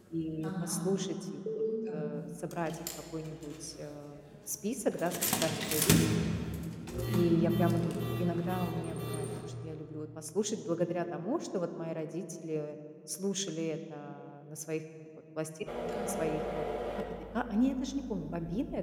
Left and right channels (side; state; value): both; identical; correlation 1.00